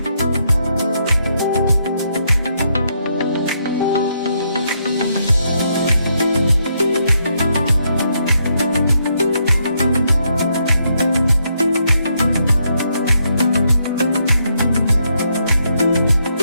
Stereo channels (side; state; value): both; inverted; correlation -0.77